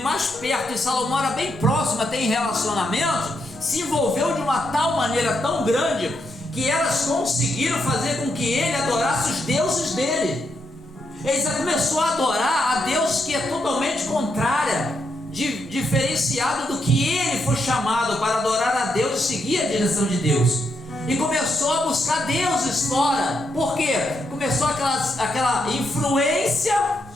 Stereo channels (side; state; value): both; normal; correlation 0.81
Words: perto, e Salomão era bem próximo, tem relacionamento, se envolveu de uma tal maneira tão grande, que elas conseguiram fazer com que ele adorasse os deuses dele. Ele já começou a adorar a Deus que é totalmente contrária, diferenciado do que ele foi chamado para adorar a Deus e seguir a direção de Deus. E começou a buscar deuses fora. Por quê? Começou aquela influência,